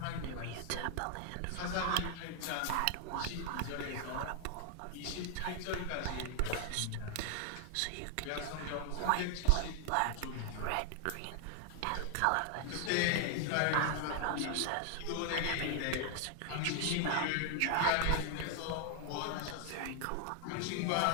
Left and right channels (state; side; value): different; both; correlation 0.00